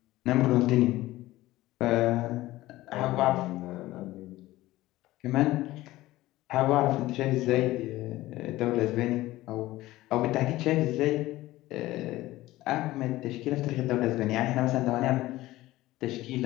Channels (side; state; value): right; quieter; 17.1 dB